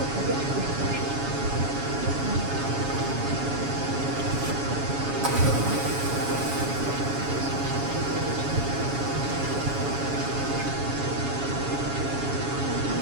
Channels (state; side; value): late; left; 7.1 ms